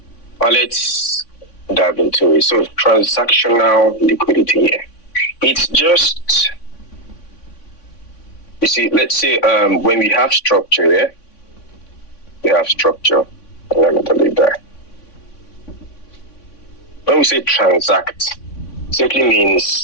But let's dive into it. So transactional liquidity here. It's just, you see, let's say when we have structure here, we have structure. Let me delete that. When we say transact, simply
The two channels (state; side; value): late; right; 3.5 ms